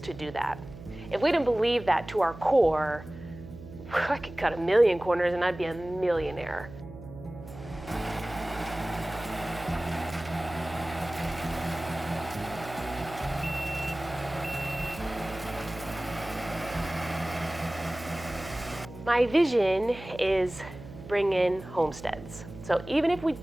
do that. If we didn't believe that to our core, I could cut 1,000,000 corners and I'd be a millionaire. My vision is bring in homesteads. So even if we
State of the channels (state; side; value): noise; right; hum, 14 dB below the sound